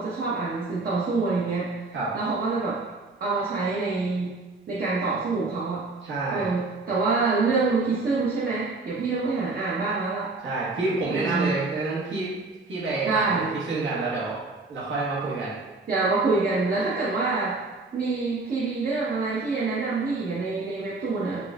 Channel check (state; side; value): quieter; left; 3.4 dB